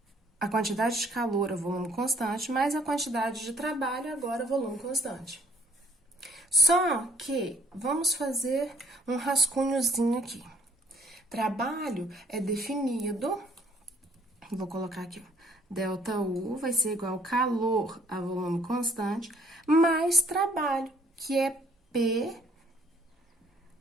a quantidade de calor a volume constante, mais a quantidade de trabalho agora a volume constante. Só que vamos fazer um rascunhozinho aqui. Trabalho é definido, vou colocar aqui, ΔU vai ser igual ao calor a volume constante, mais trabalho, que é P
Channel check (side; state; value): both; normal; correlation 0.60